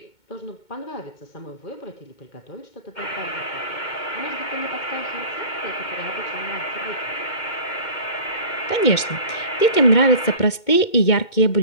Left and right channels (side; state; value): right; late; 2.2 ms